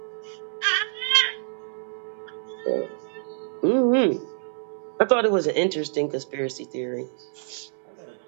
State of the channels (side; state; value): left; silent; digital silence